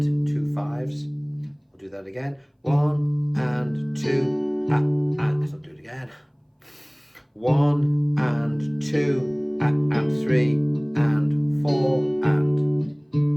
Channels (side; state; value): both; identical; correlation 1.00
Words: 2 5s. I'll do that again. 1 and 2, and. I'll do it again. 1 and 2 and 3 and 4 and.